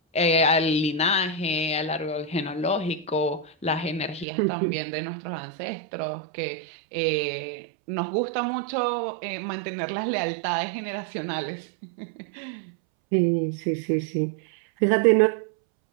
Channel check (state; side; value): drops out; left; at 4.2 s